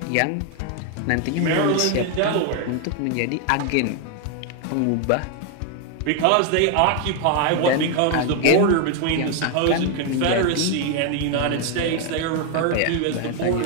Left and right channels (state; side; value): different; both; correlation 0.01